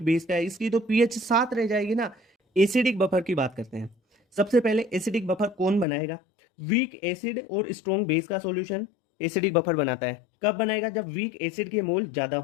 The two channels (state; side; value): drops out; right; at 5.9 s